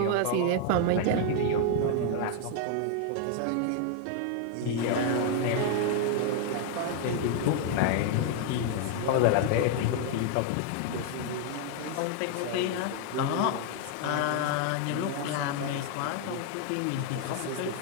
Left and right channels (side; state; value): both; different; correlation 0.00